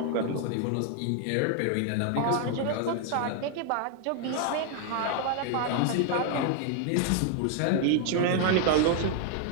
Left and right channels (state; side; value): different; both; correlation 0.00